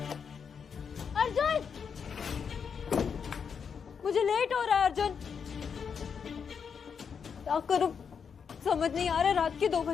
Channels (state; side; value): quieter; right; 6.6 dB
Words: अर्जुन, मुझे लेट हो रहा है अर्जुन। क्या करूं समझ नहीं आ रहा। रात के 2